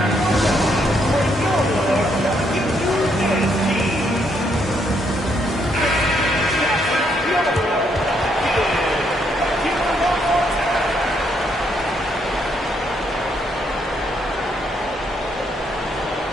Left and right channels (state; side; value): normal; both; correlation 0.74